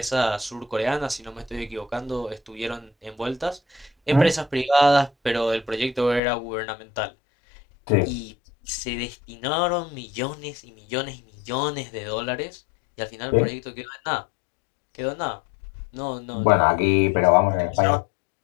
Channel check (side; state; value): right; drops out; at 6.2 s